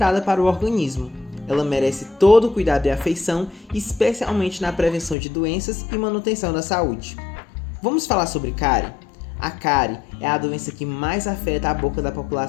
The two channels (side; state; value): right; drops out; at 5.2 s